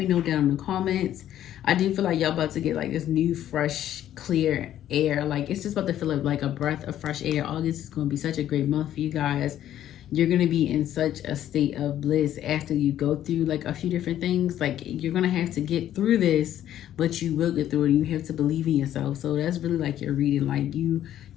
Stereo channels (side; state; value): right; quieter; 11.7 dB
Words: know down in the comments. I do feel like y'all about to get like this new, fresh, clear air. Like it's just about to feel like a breath of fresh air. August is going to be such a great month for you guys. You're going to be in such a state of bliss after you go through like a few different things. Like you're going to have to get through this, but you will get through it. You have to believe in yourself. So that's really like your reading. Like you